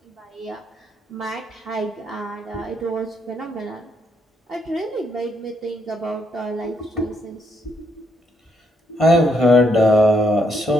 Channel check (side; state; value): both; normal; correlation 0.76